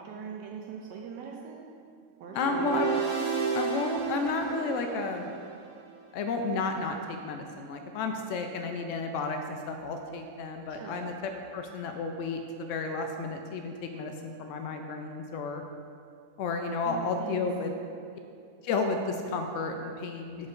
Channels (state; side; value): late; right; 3.6 ms